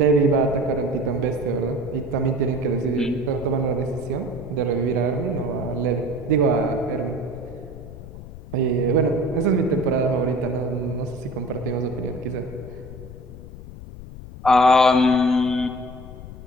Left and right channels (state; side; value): noise; left; rumble, 14 dB below the sound